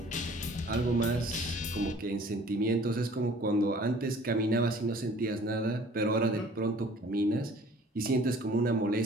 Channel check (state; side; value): normal; both; correlation 0.51